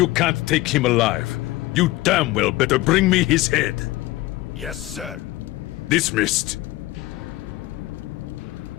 can't take him alive, you damn well better bring me his head. Yes, sir. Dismissed.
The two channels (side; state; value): right; quieter; 18.4 dB